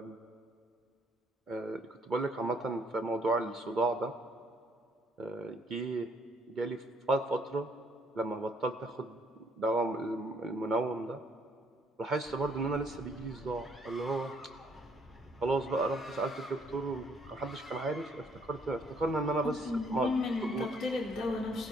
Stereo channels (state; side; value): normal; both; correlation 0.66